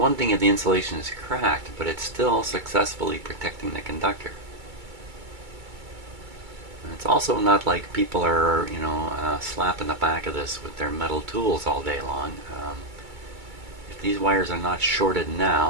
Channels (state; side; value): late; left; 2.3 ms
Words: thing if the insulation is cracked, but it's still successfully protecting the conductor. And it's also not like people are, slapping the back of this with their metal tools all day long. If these wires are not shorted